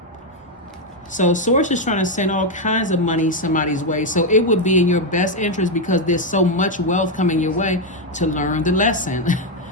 So Source is trying to send all kinds of money somebody's way. So it would be in your best interest, because there's so much wealth coming your way, to learn the lesson.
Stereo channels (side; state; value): both; normal; correlation 0.03